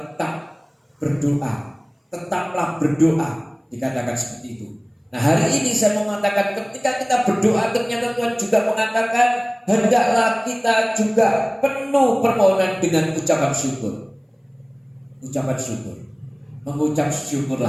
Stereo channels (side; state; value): both; identical; correlation 1.00